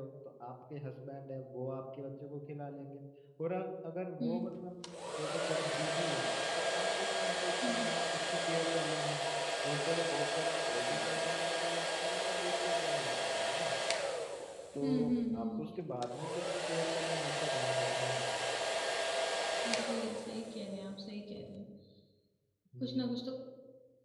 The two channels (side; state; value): both; identical; correlation 1.00